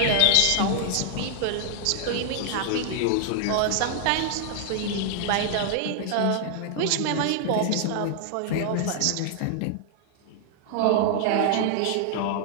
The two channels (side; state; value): both; different; correlation 0.00